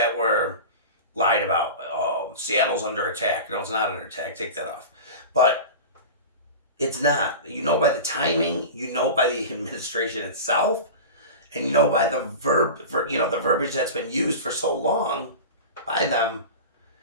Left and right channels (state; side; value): inverted; both; correlation -0.31